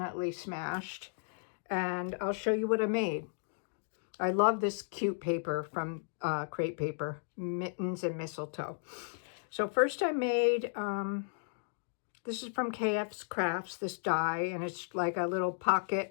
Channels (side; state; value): right; silent; digital silence